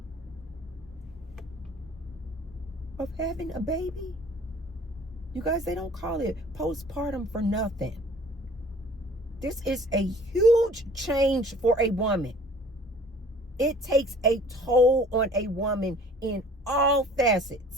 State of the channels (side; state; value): both; normal; correlation 0.50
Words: of having a baby. You guys, they don't call it postpartum for nothing. This is a huge change for a woman. It takes a toll on a woman in all